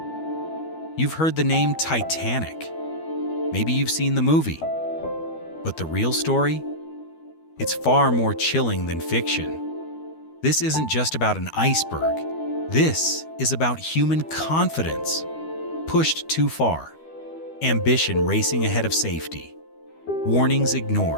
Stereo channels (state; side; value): late; right; 12 ms